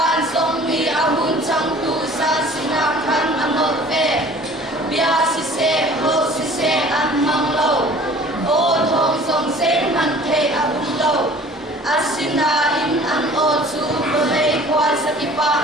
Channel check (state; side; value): normal; both; correlation 0.49